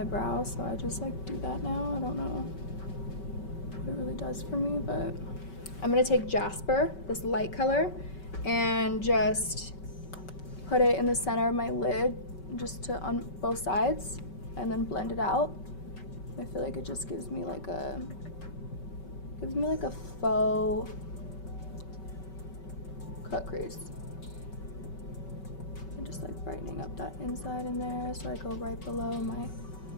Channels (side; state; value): right; late; 5.3 ms